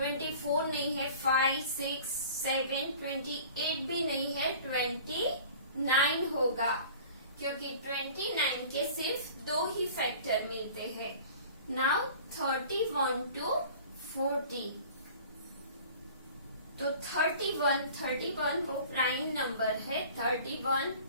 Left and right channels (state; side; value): inverted; both; correlation -0.44